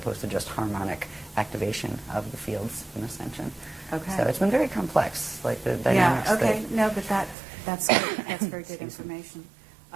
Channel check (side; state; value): left; drops out; at 7.4 s